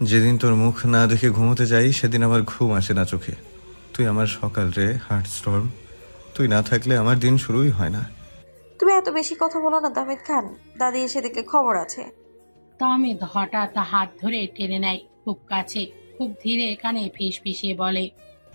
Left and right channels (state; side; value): inverted; both; correlation -1.00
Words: যেদিন তোর মুখ না দেখে ঘুমোতে যাই সেদিন আমার ঘুম আসে না চোখে। তুই আমার সকাল রে, হার্ট স্টর্ম। তুই না থাকলে আমার দিন শুরুই হয় না। তুমি এত বেশি কথা বলো না তাহমিদ খান, দাদি এসে দেখলে খবর আছে। তাহমিদ হঠাৎ হাত ধরে টেনে নেয় খুব কাছে, খুব ধীরে কানে ফিসফিসিয়ে বলে,